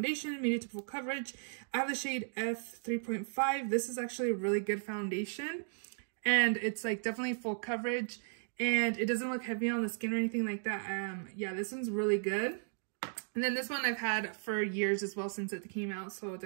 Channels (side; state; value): left; silent; digital silence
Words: medium to full coverage. I have the shade F3.5. This is actually a really good foundation, and it's like definitely full coverage, and it doesn't look heavy on the skin or anything like that. Yeah, this one's really good. And then this one I've had for years as well, since it came out, so